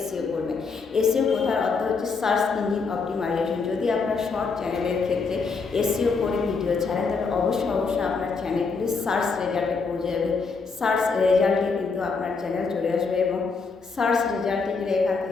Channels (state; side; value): quieter; right; 4.7 dB